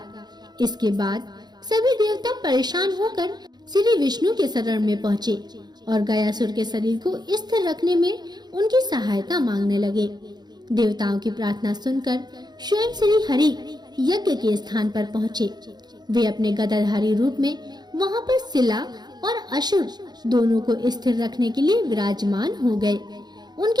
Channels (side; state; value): left; late; 0.20 ms